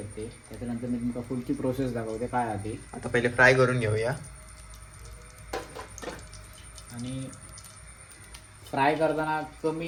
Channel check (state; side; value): identical; both; correlation 1.00